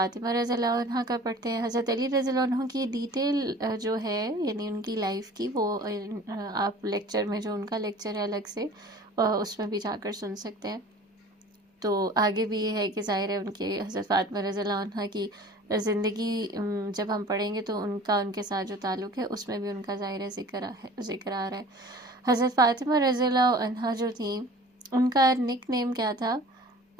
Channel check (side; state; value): both; normal; correlation 0.44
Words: رضی اللہ عنہ کا پڑھتے ہیں. حضرت علی رضی اللہ عنہ کی ڈیٹیل جو ہے یعنی ان کی لائف کی وہ آپ لیکچر میں جو ان کا لیکچر ہے الگ سے اس میں بھی جا کر سن سکتے ہیں. تو آگے بھی یہ ہے کہ ظاہر ہے ان کے حضرت فاطمہ رضی اللہ عنہ کی زندگی جب ہم پڑھیں گے تو ان کے ساتھ جو تعلق ہے اس میں بھی ان کا ظاہر ذکر آ رہا ہے. حضرت فاطمہ رضی اللہ عنہ جو تھیں ان کا نک نیم کیا تھا؟